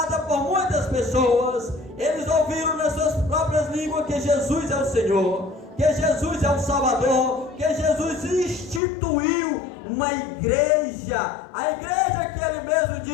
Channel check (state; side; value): drops out; right; at 8.8 s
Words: por muitas pessoas. Eles ouviram nas suas próprias línguas que Jesus é o Senhor, que Jesus é o Salvador, que Jesus instituiu uma igreja, a igreja que ele mesmo